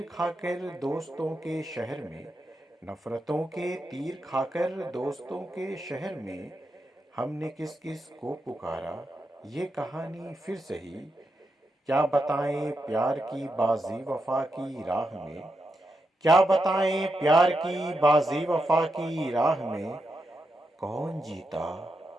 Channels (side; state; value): both; normal; correlation 0.85